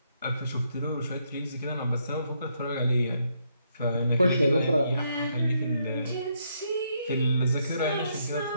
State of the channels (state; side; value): inverted; both; correlation -0.75